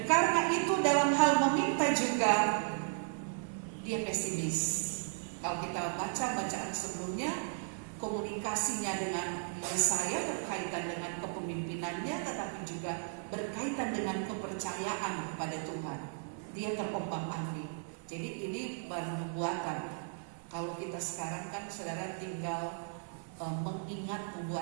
karena itu dalam hal meminta juga dia pesimis. Kalau kita baca bacaan sebelumnya, komunikasinya dengan Yesaya berkaitan dengan kepemimpinannya, tetapi juga berkaitan dengan kepercayaan kepada Tuhan. Dia terombang-ambing. Jadi ini baru nubuatan. Kalau kita sekarang kan saudara tinggal mengingat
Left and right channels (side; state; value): left; silent; 54 dB below the other